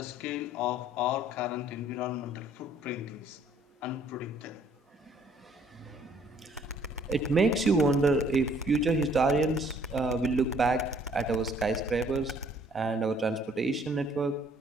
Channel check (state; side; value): normal; both; correlation 0.60